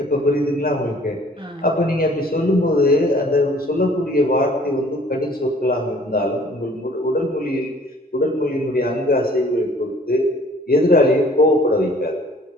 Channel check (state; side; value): normal; both; correlation 0.55